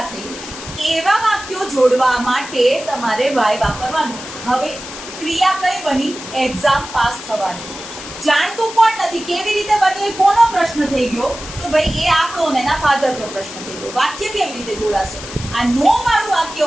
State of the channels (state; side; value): noise; left; hiss, 12 dB below the sound